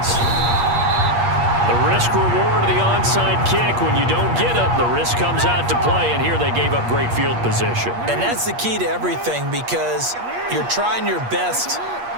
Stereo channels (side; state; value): left; late; 8.5 ms